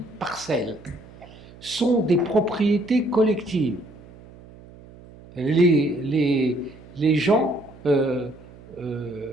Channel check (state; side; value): noise; right; hum, 21 dB below the sound